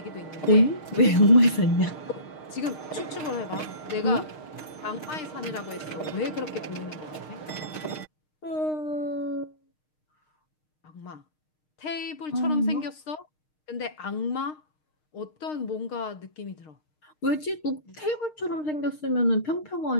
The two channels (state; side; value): late; right; 6.5 ms